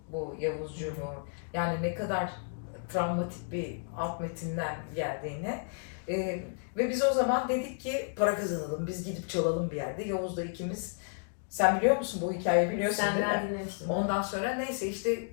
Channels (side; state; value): right; silent; digital silence